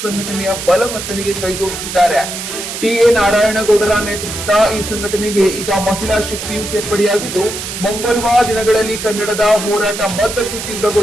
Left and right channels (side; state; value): right; noise; hiss, 7 dB below the sound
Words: ಸಂಘಟನೆಯ ಬಲವರ್ಧನೆಗೆ ಕೈಜೋಡಿಸಿದ್ದಾರೆ. ಟಿ.ಎ. ನಾರಾಯಣಗೌಡರ ನೇತೃತ್ವದ ಈ ಸಂಘಟನೆಗೆ ಈಗ ಮಹಿಳಾ ಶಕ್ತಿಯು ಸೇರ್ಪಡೆಯಾಗಿದ್ದು, ಮುಂಬರುವ ದಿನಗಳಲ್ಲಿ ಕನ್ನಡದ ಹೋರಾಟ ಮತ್ತಷ್ಟು